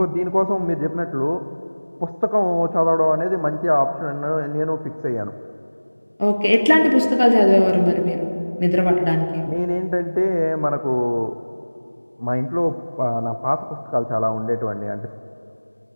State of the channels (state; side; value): inverted; both; correlation -1.00